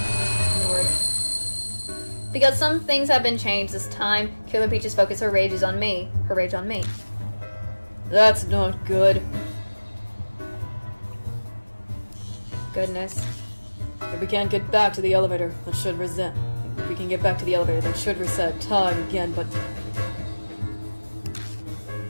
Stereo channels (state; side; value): inverted; both; correlation -1.00